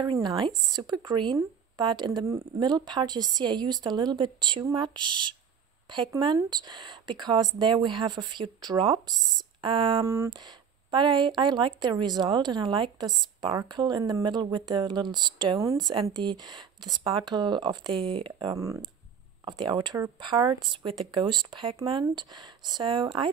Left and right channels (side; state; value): left; quieter; 7.2 dB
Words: nice, super green, but in the middle part you see I used a little bit too much pigment because there we have a few drops, but I like the result, and I like the sparkle in the middle with the little stones and the sparkle of the outer parts with the ghost pigment. So